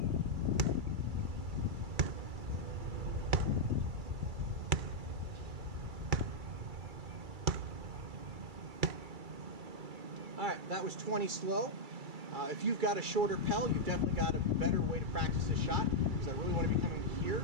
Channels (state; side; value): late; left; 2.3 ms